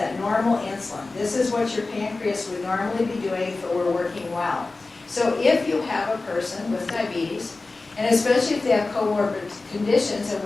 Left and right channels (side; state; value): right; quieter; 3.5 dB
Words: normal insulin. This is what your pancreas would normally be doing if it were working well. So if you have a person with diabetes, and especially if they have comorbid conditions, and